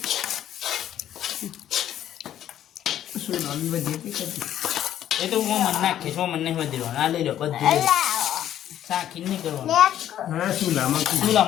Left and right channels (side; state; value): right; quieter; 11.3 dB